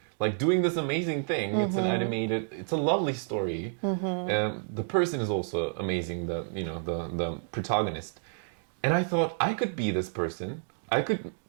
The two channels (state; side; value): silent; left; digital silence